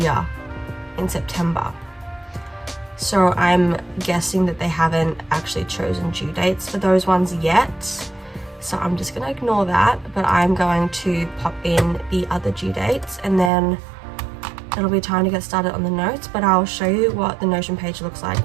in September. So I'm guessing that they haven't actually chosen due dates for those ones yet. So I'm just gonna ignore that, but I'm going to pop in the other due dates and then it'll be time to get started on the notes, but I'll show you what the Notion page looks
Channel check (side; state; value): left; drops out; at 13.5 s